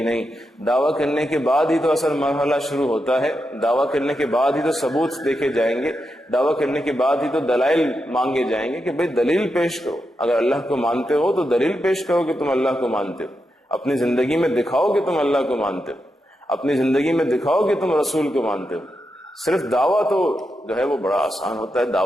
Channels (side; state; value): both; normal; correlation 0.86